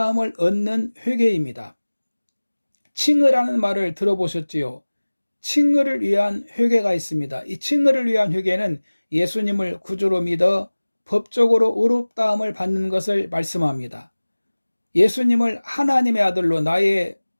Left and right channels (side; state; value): both; inverted; correlation -1.00